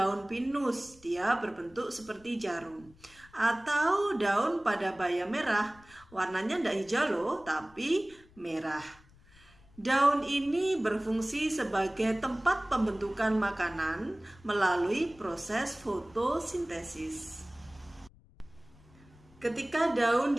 pinus, dia berbentuk seperti jarum. Atau daun padabaya merah, warnanya tidak hijau loh, tapi merah. Daun ini berfungsi sebagai tempat pembentukan makanan melalui proses fotosintesis. Ketika daun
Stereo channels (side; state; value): left; noise; rumble, 26 dB below the sound